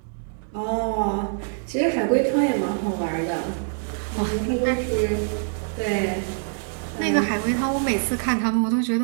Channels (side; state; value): left; silent; digital silence